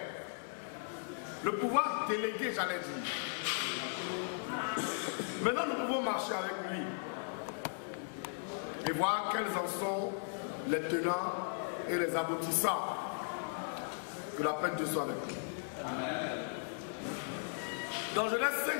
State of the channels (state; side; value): silent; right; digital silence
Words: le pouvoir délégué, j'allais dire. Maintenant, nous pouvons marcher avec lui et voir quels en sont les tenants et les aboutissants. Que la paix de Dieu soit avec nous. Amen. Dans Genèse